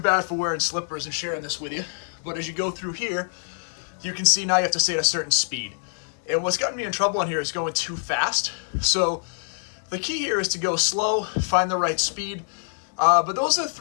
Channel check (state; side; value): silent; right; digital silence